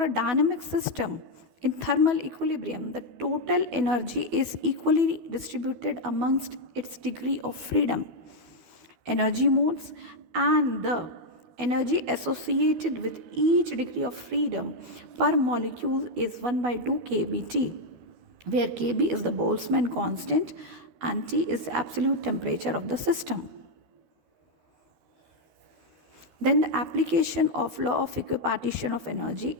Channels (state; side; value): late; left; 12 ms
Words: a dynamic system in thermal equilibrium, the total energy is equally distributed amongst its degree of freedom, energy modes, and the energy associated with each degree of freedom per molecule is 1 by 2 kBT, where Kb is the Boltzmann constant and T is the absolute temperature of the system. Then the application of law of equipartition of energy